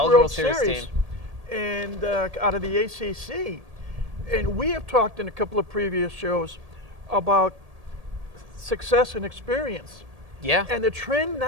Series. and out of the ACC. And we have talked in a couple of previous shows about success and experience. Yeah. And the trend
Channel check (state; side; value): late; left; 1.8 ms